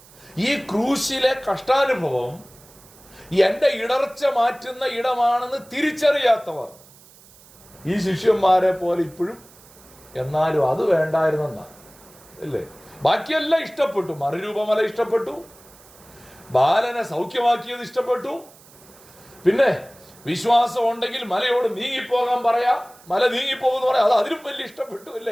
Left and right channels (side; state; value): right; noise; hiss, 24 dB below the sound